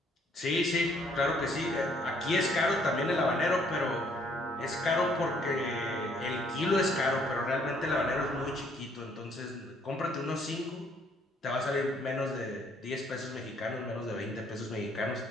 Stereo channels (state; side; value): normal; both; correlation 0.65